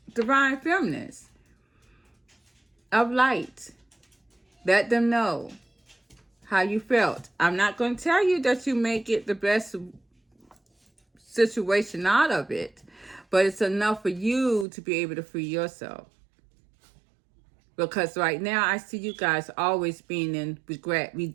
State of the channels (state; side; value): drops out; left; at 14.7 s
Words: divine feminines of light. Let them know how you felt. I'm not going to tell you that you make it the best situation out of it, But it's enough for you to be able to free yourself. Because right now, I see you guys always being in regret. We've